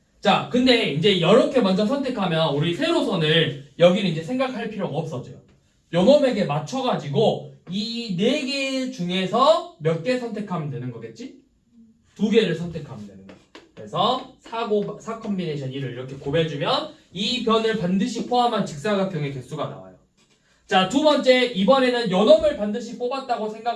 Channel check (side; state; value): both; identical; correlation 1.00